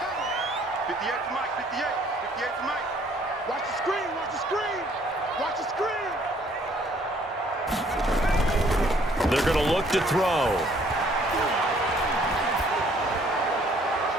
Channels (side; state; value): both; normal; correlation 0.61